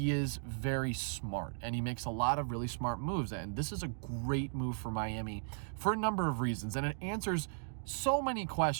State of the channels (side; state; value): left; silent; digital silence